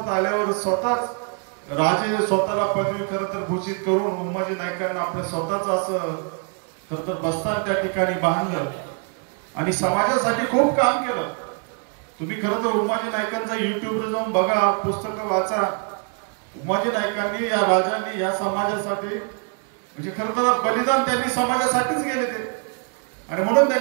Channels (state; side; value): quieter; left; 39.5 dB